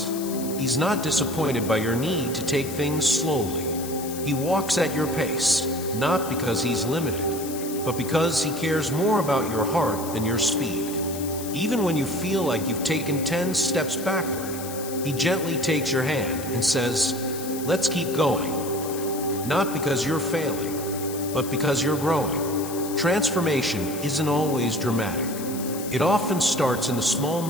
He's not disappointed by your need to take things slowly. He walks at your pace, not because He's limited, but because He cares more about your heart than your speed. Even when you feel like you've taken 10 steps backward, He gently takes your hand and says, "Let's keep going." Not because you're failing, but because you're growing. Transformation isn't always dramatic. It often starts in the small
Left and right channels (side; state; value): left; noise; hiss, 11 dB below the sound